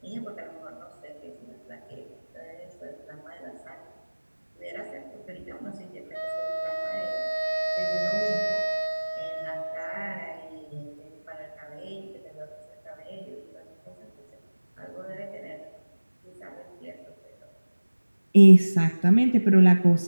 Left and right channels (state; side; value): inverted; both; correlation -1.00